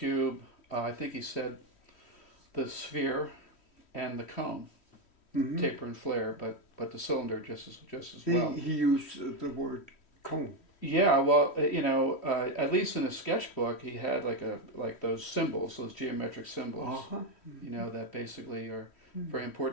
I think he said the sphere and the cone, Mm-hmm. taper and flare, but the cylinder just as well. He used the word cone. Yeah, well, at least in his sketchbook, he had like those symbols, those geometric symbols, Uh-huh. that basically are very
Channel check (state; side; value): late; right; 3.1 ms